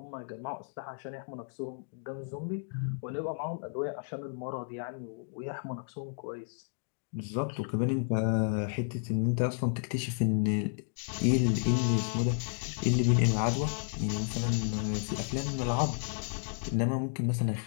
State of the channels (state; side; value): silent; right; digital silence